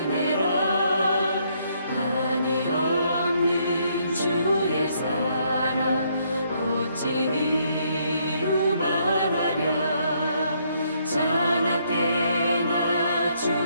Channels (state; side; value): inverted; both; correlation -0.71